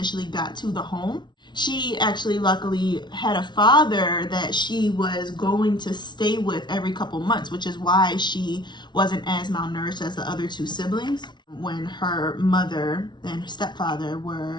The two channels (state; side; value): late; right; 0.21 ms